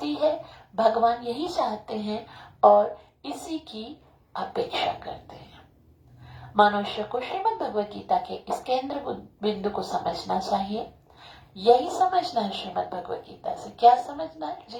है। भगवान यही चाहते हैं और इसी की अपेक्षा करते हैं। मनुष्य को श्रीमद् भगवद गीता के इस केंद्र बिंदु को समझना चाहिए। यही समझना है श्रीमद् भगवद गीता से। क्या समझना है?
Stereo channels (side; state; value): both; identical; correlation 1.00